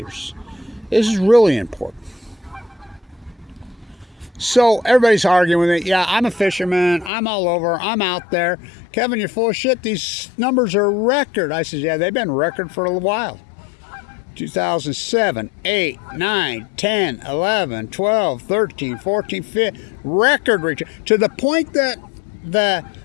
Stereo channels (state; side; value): drops out; right; at 7.1 s